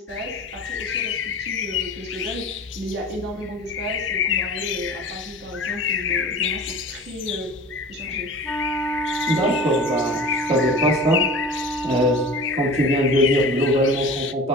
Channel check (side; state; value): both; normal; correlation 0.38